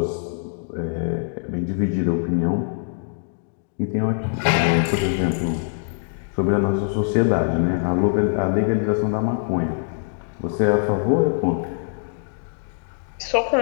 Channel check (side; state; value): right; silent; digital silence